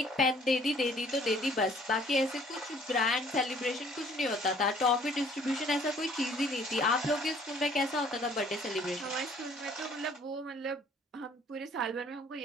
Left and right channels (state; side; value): normal; both; correlation 0.57